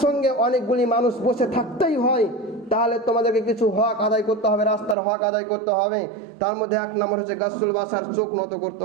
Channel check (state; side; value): drops out; left; at 5.0 s